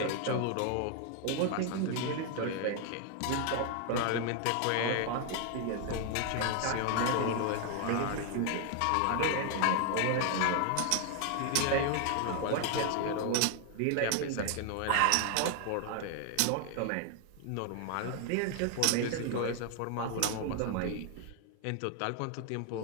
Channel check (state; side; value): different; both; correlation 0.00